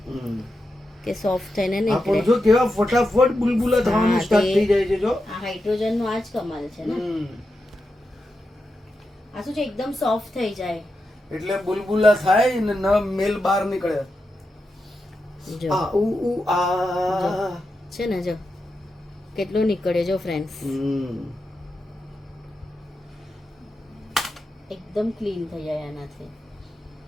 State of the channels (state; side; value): normal; both; correlation 0.88